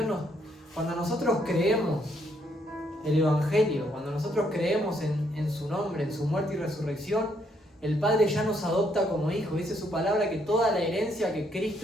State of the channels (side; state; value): both; normal; correlation 0.72